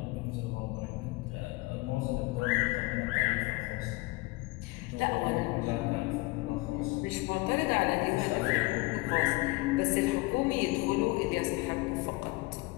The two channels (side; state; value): right; quieter; 23.1 dB